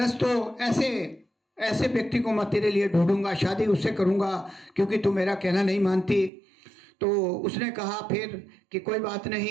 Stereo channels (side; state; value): left; drops out; at 6.3 s